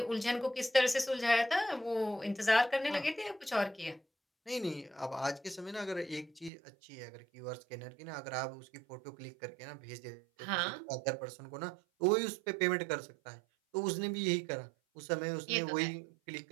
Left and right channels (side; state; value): left; drops out; at 6.5 s